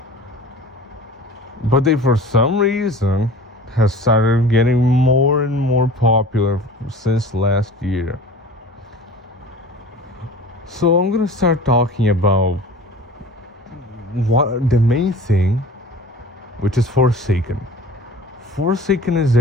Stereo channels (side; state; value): both; normal; correlation 0.41